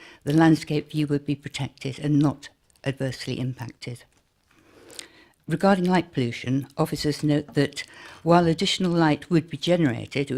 the landscape view would be protected and not adversely impacted. Regarding light pollution, officers note that while additional light would be generated, it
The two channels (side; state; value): both; identical; correlation 1.00